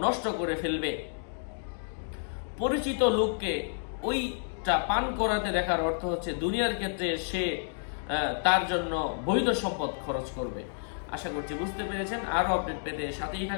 নষ্ট করে ফেলবে। পরিচিত লোককে ওইটা পান করাতে দেখার অর্থ হচ্ছে দুনিয়ার ক্ষেত্রে সে তার জন্য বৈধ সম্পদ খরচ করবে। আশা করছি বুঝতে পেরেছেন। আরো আপডেট পেতে সাথেই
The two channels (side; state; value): right; silent; digital silence